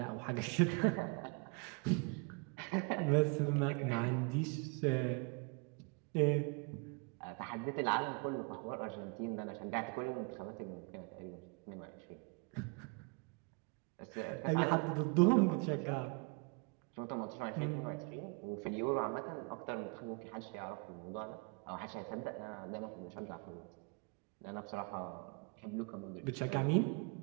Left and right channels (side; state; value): left; quieter; 31.8 dB